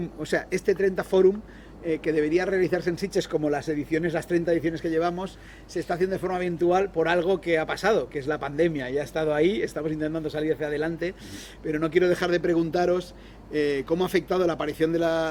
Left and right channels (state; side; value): identical; both; correlation 1.00